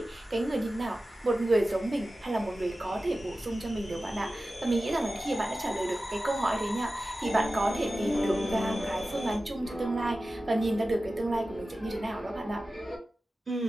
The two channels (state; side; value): normal; both; correlation 0.95